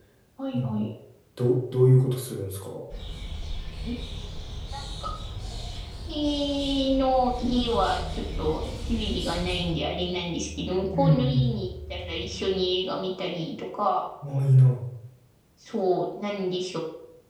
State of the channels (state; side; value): identical; both; correlation 1.00